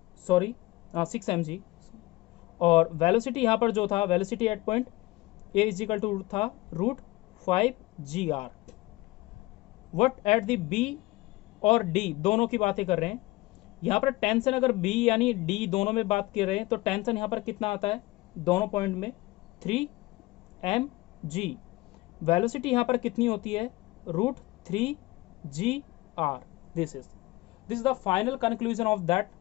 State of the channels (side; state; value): right; quieter; 20.7 dB